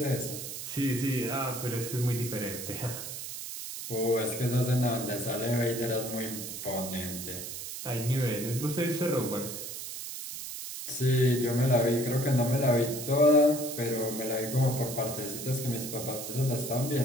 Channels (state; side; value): noise; right; hiss, 8 dB below the sound